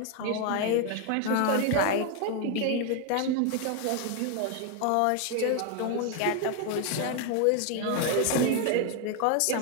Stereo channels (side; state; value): both; different; correlation 0.01